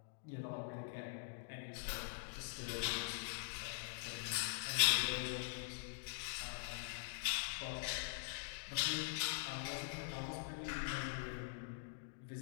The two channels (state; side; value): silent; right; digital silence